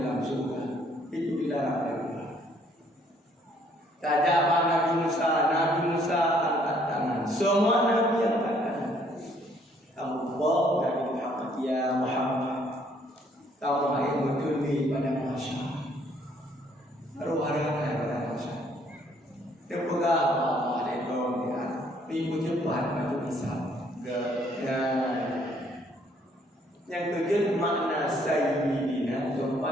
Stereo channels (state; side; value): normal; both; correlation 0.65